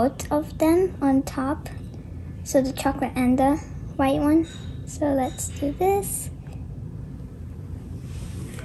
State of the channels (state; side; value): identical; both; correlation 1.00